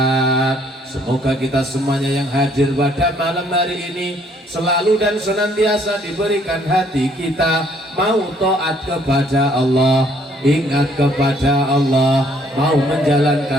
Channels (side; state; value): both; normal; correlation 0.64